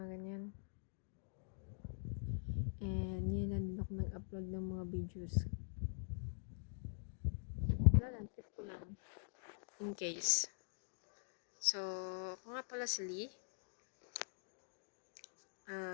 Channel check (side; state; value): right; silent; digital silence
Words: ganyan. And yun na din ako nag-upload ng mga videos. Wala lang, trip ko lang. In case. So, ako nga pala si Lee.